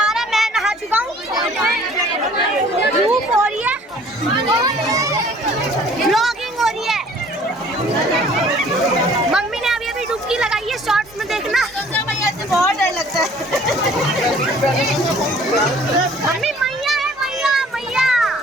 रहा है, मैं नहा चुका हूँ। धूप हो रही है, व्लॉगिंग हो रही है। मम्मी ने अभी डुबकी लगाई है, शॉर्ट्स में देखना। गंगा मैया से बहुत डर लगता है। मम्मी मैया है, मैया मैया।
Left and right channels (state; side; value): normal; both; correlation 0.53